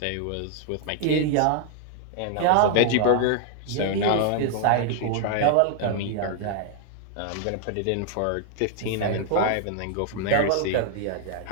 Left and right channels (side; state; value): both; different; correlation 0.00